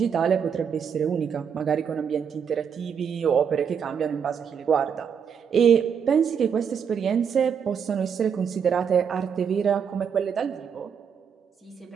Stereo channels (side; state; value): left; quieter; 7.2 dB